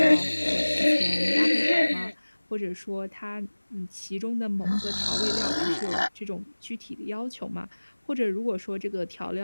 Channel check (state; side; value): inverted; both; correlation -1.00